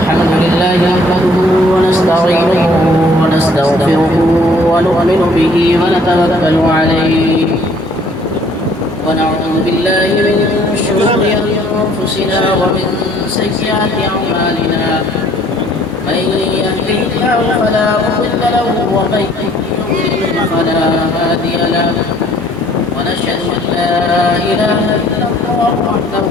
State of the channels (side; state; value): both; normal; correlation 0.59